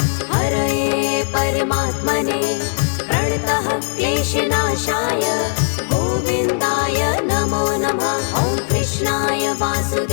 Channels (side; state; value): right; silent; digital silence